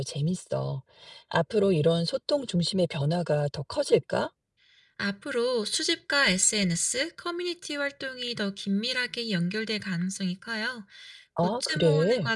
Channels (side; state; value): both; identical; correlation 1.00